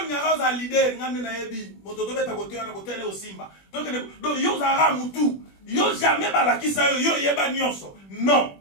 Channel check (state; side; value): late; right; 21 ms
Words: ngara za leader ngane na yebi, mototo beta kote na kote le osimba. Donc yo zara mutu, yo jamais balakisa yo yeba nyonso. Non.